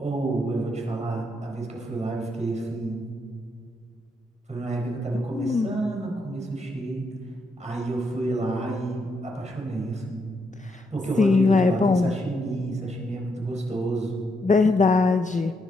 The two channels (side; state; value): both; normal; correlation 0.78